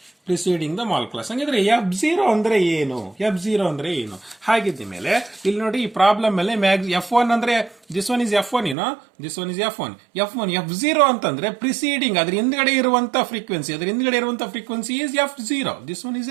Preceding the mall class. ಹಂಗಿದ್ರೆ F0 ಅಂದ್ರೆ ಏನು? ಹಾಗಿದ್ದ ಮೇಲೆ ಇಲ್ಲಿ ನೋಡಿ, ಈ problem ಮೇಲೆ F1 ಅಂದ್ರೆ this one is F1, this one is F1. F0 ಅಂತಂದ್ರೆ ಪ್ರಿಸೀಡಿಂಗ್, ಅದ್ರ ಹಿಂದ್ಗಡೆ ಇರುವಂತ frequency is F0. This one is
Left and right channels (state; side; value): drops out; left; at 8.8 s